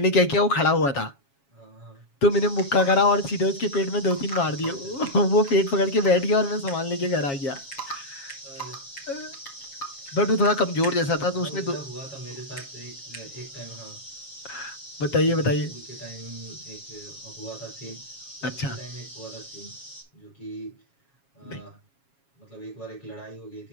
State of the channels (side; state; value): right; late; 7.3 ms